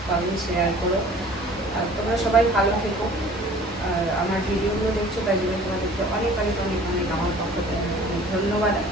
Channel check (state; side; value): normal; both; correlation 0.49